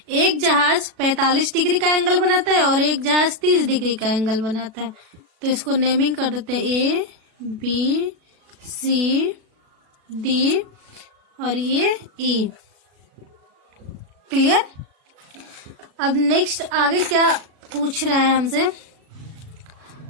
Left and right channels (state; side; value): late; left; 37 ms